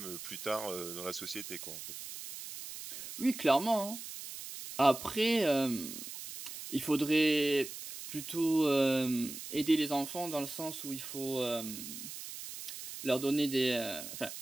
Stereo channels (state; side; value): noise; right; hiss, 10 dB below the sound